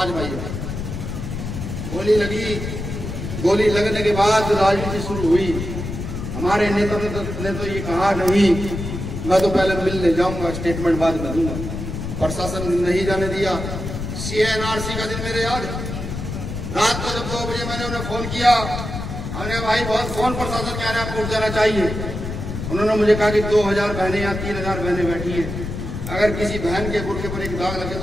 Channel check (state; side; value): noise; left; rumble, 6 dB below the sound